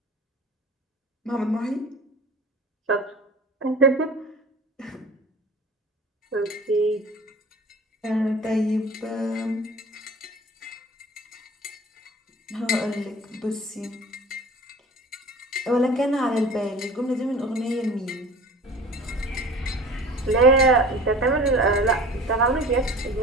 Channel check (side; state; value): both; normal; correlation 0.41